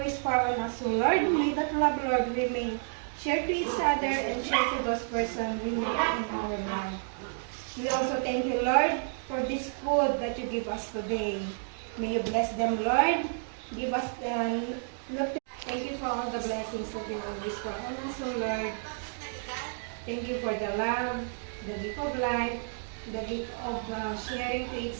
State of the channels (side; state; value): left; silent; digital silence